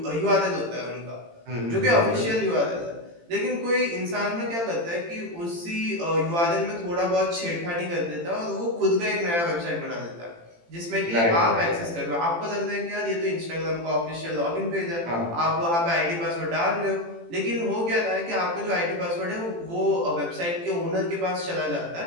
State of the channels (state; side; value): late; left; 18 ms